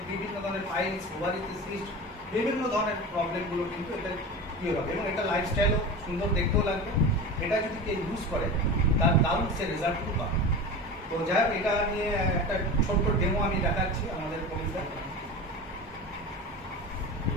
বিভিন্ন ধরনের পাইলস, ওভারিতে সিস্ট, বিভিন্ন ধরনের প্রবলেমগুলো কিন্তু এটা ক্লিয়ার হবে। এবং এটা লাইফস্টাইলও সুন্দর দেখতেও লাগবে। এটা যদি কেউ ইউজ করে তার দারুণ সে রেজাল্টগুলো পাবে। তো যাই হোক, এটা নিয়ে একটা ছোট্ট ডেমো আমি দেখাচ্ছি আমাদের কলিগদের।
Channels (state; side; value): normal; both; correlation 0.30